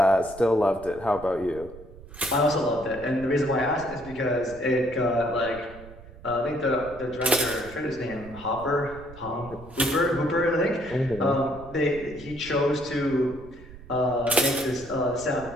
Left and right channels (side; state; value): right; noise; rumble, 17 dB below the sound